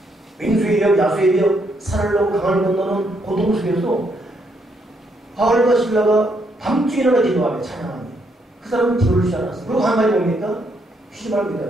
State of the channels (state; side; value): normal; both; correlation 0.74